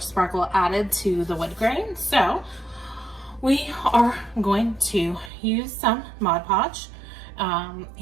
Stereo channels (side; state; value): left; drops out; at 5.3 s